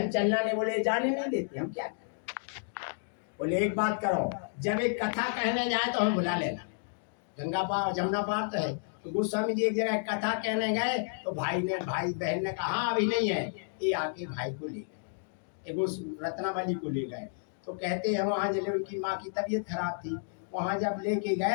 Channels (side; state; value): right; silent; digital silence